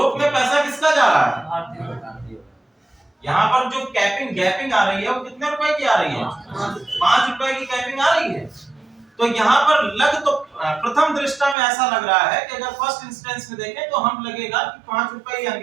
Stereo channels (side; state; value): left; drops out; at 11.6 s